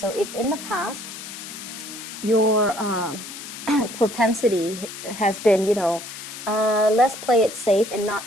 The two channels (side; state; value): left; noise; hiss, 11 dB below the sound